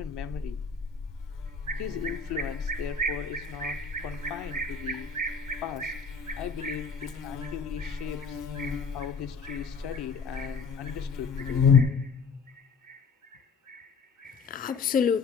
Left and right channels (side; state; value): right; quieter; 4.9 dB